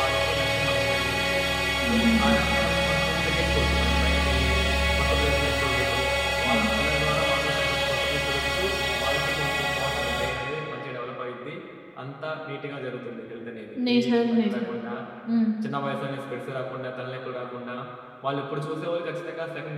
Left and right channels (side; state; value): both; identical; correlation 1.00